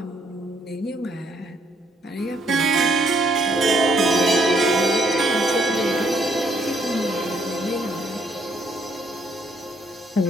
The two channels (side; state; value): both; normal; correlation 0.69